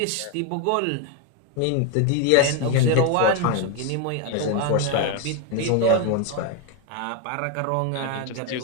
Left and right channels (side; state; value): both; different; correlation 0.01